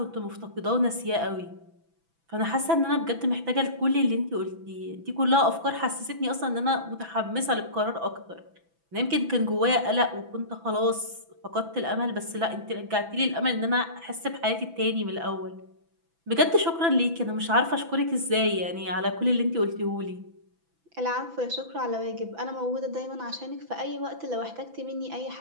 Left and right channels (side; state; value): left; late; 6.0 ms